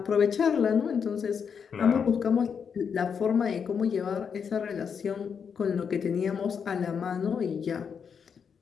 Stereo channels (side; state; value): right; quieter; 6.7 dB